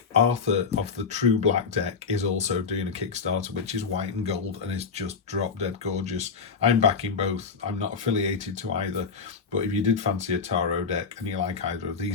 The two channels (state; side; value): quieter; right; 5.4 dB